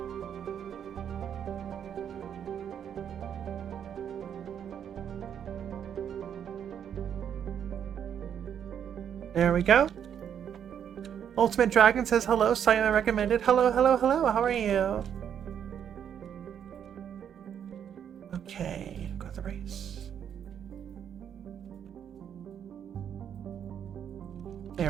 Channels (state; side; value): quieter; left; 8.7 dB